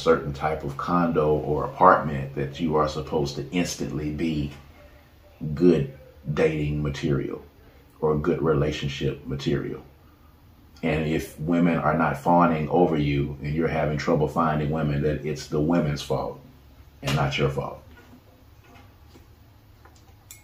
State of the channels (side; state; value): both; identical; correlation 1.00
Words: type of condo or apartment, that you are supposed to instantly be good dating material or good relationship material. And if women are not fawning over you and you're having trouble finding women, that it's the women's fault and not your fault.